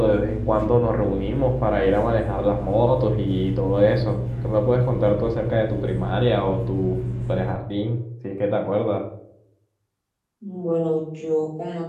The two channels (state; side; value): identical; both; correlation 1.00